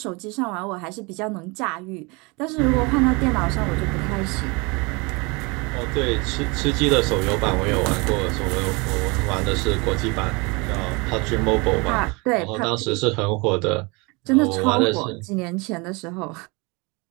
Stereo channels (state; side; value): quieter; left; 27.9 dB